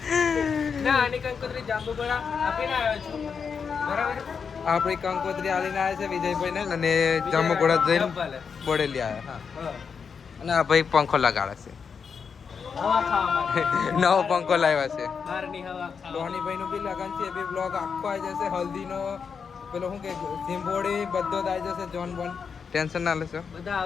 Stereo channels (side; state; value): right; quieter; 6.1 dB